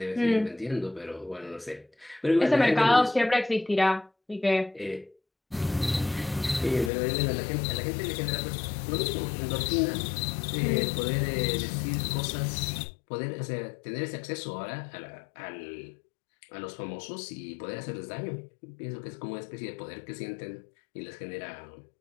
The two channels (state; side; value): drops out; right; at 6.9 s